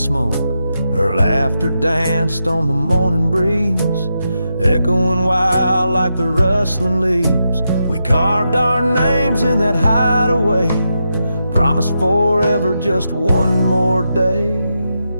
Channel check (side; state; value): both; inverted; correlation -0.86